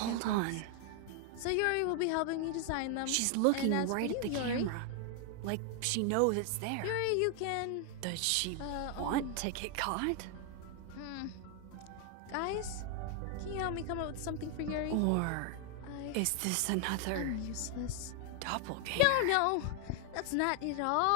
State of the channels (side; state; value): both; different; correlation 0.00